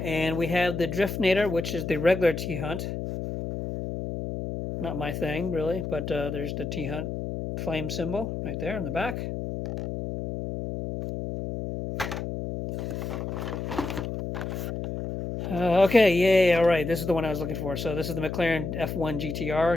we have the Driftnator, which is the regular T-Hunt. Not my thing, really, but there's the T-Hunt flame symbol right there in the back. Okay, yay, all right, this is the one I was looking for. So this is the McLaren F1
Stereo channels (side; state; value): left; noise; hum, 5 dB below the sound